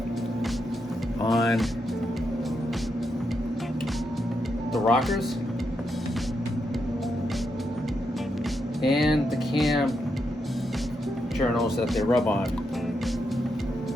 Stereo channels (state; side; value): normal; both; correlation 0.82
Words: on the rockers and the cam journals that they rub on.